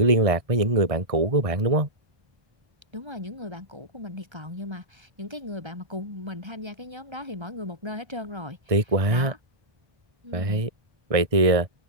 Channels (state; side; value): late; left; 1.6 ms